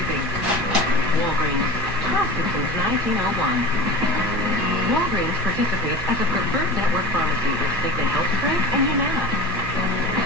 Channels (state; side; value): normal; both; correlation 0.33